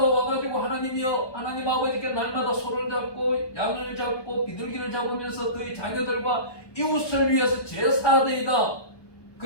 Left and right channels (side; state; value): right; late; 1.2 ms